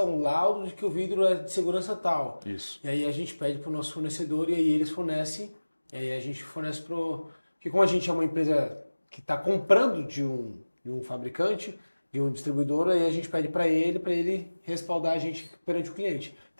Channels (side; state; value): both; inverted; correlation -1.00